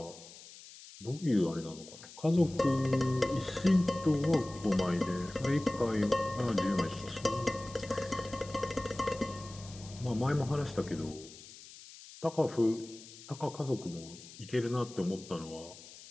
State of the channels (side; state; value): left; noise; hiss, 17 dB below the sound